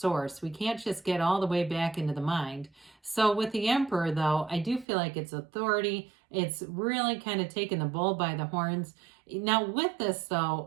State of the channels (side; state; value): left; drops out; at 4.9 s